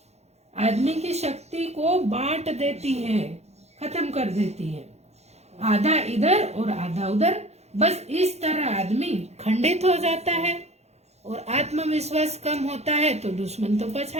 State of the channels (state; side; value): late; left; 0.31 ms